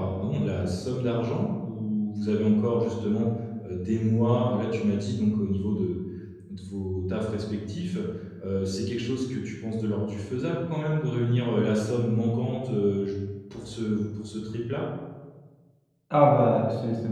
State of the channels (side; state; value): both; identical; correlation 1.00